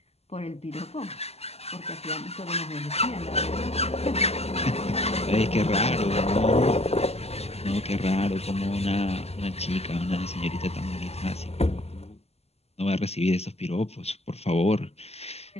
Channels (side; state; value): right; late; 0.30 ms